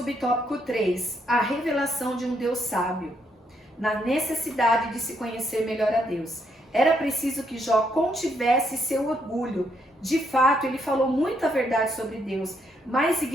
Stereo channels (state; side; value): normal; both; correlation 0.75